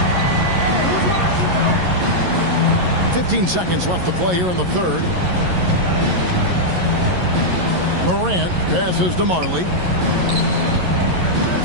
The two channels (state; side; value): late; left; 11 ms